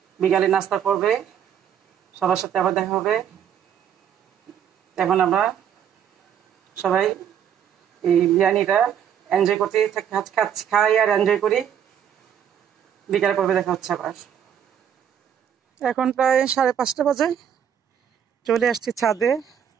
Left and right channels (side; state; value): left; quieter; 8.9 dB